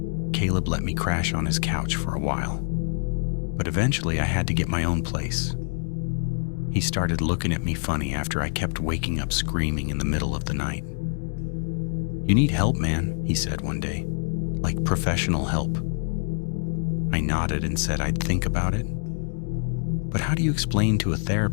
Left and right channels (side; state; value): right; silent; 56 dB below the other